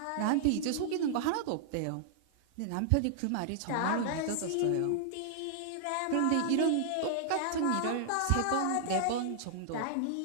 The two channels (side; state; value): both; different; correlation -0.01